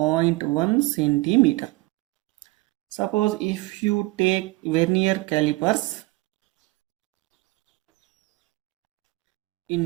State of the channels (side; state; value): left; quieter; 21.8 dB